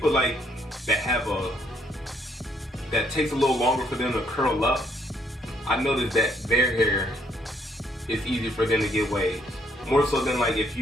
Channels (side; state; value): both; normal; correlation 0.69